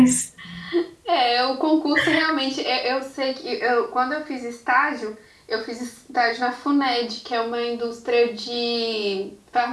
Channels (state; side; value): identical; both; correlation 1.00